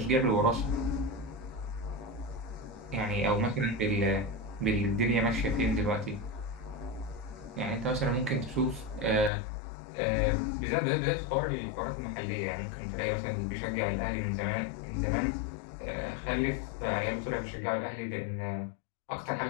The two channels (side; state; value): right; drops out; at 9.3 s